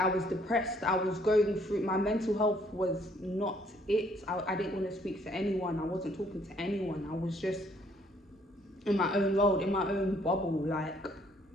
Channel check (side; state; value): both; normal; correlation 0.65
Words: was depressed. I was going through, my mental health was not it. I didn't want to speak to anyone. I wasn't talking to anyone. I was just in my own world, in my own bubble. Like,